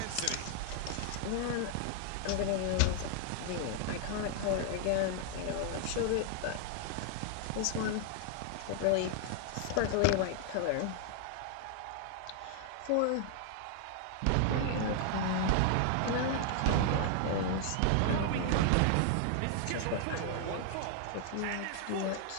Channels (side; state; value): both; different; correlation 0.00